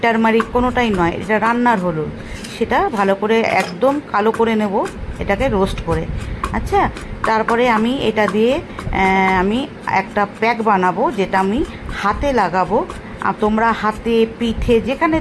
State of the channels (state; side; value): identical; both; correlation 1.00